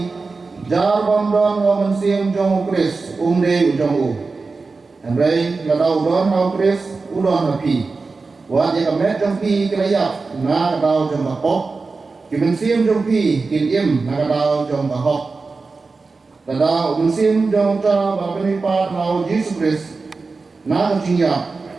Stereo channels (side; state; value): left; quieter; 4.1 dB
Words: jar bandon ho mensim jong ukris, umde ujong u. Henry ladau don ho ukris, udon hapi. Wat ya kamet jong pi kelayak, na kadau jong bakok. Kimensim jong pi, kinim na kadau jong bakok. Tada umensim jong ta bapenipat lau Yesus Kristus na kajingya